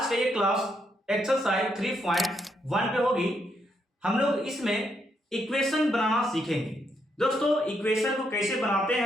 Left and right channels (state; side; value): normal; both; correlation 0.77